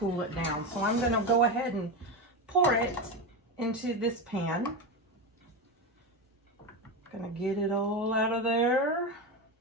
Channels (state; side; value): normal; both; correlation 0.17